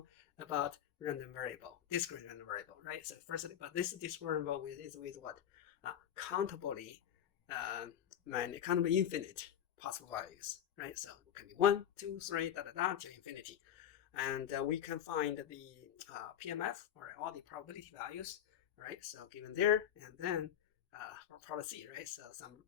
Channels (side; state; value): right; quieter; 10.0 dB